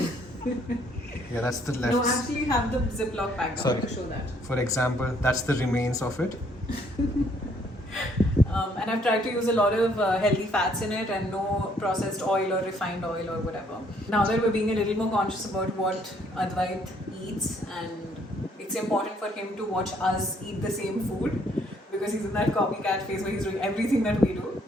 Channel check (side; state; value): both; normal; correlation 0.66